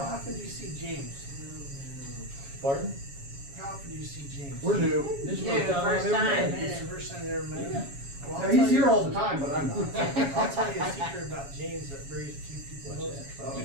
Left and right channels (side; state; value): left; late; 7.2 ms